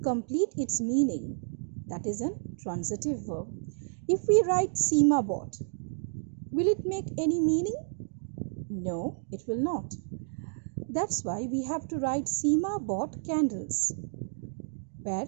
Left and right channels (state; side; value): silent; left; digital silence